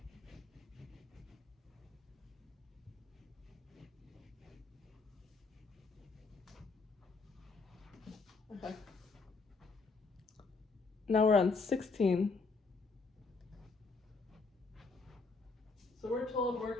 Okay. Now we're on 16. So we're told we're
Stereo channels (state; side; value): quieter; right; 4.1 dB